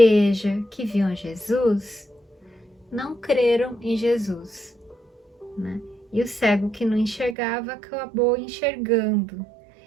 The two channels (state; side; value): drops out; left; at 7.4 s